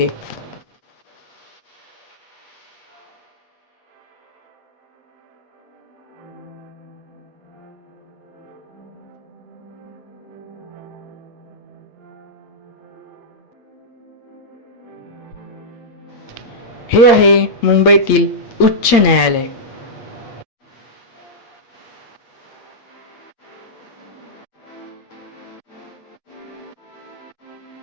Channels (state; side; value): late; right; 8.3 ms